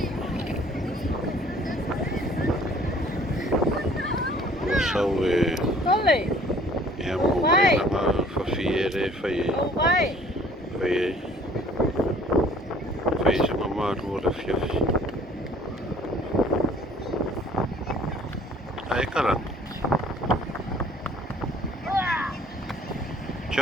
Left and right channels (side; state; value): both; normal; correlation 0.54